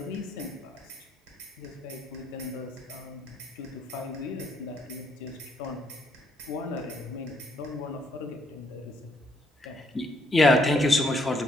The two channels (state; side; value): normal; both; correlation 0.71